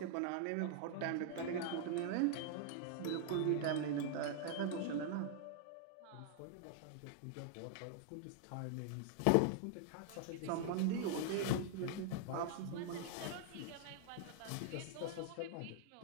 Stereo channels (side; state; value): both; different; correlation 0.00